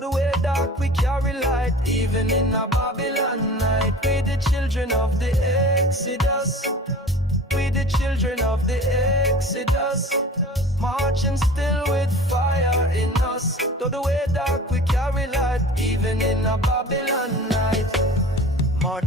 way dark we carry light, even in a Babylon night. We the children of the Exodus. We the children of the Exodus, marching still with fire in us. Though the way dark, we carry light, even in a Babylon night.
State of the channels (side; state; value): both; normal; correlation 0.41